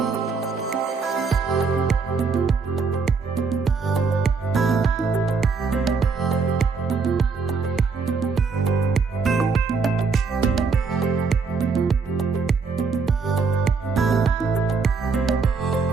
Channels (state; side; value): quieter; left; 4.9 dB